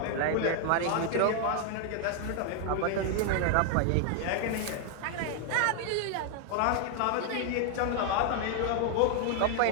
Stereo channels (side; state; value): both; different; correlation 0.00